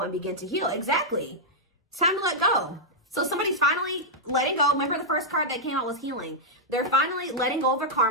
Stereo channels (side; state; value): both; normal; correlation -0.07